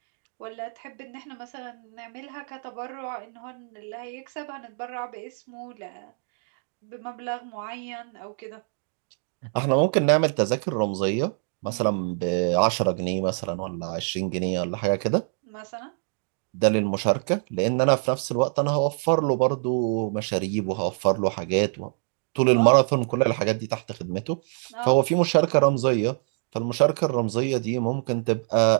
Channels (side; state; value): left; silent; 61 dB below the other